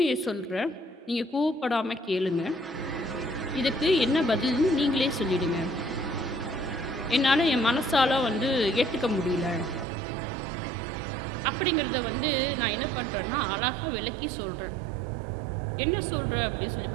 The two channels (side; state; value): left; drops out; at 9.9 s